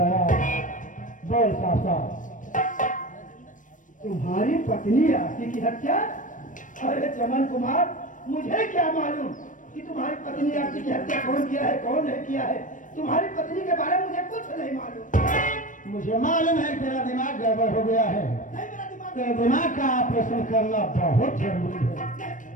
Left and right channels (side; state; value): right; late; 0.38 ms